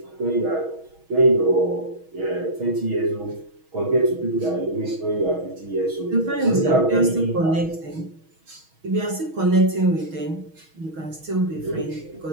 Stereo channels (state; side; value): late; left; 6.3 ms